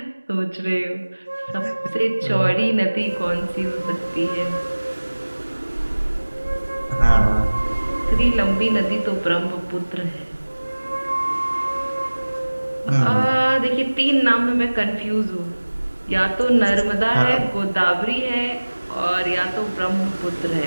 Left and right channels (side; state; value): both; inverted; correlation -1.00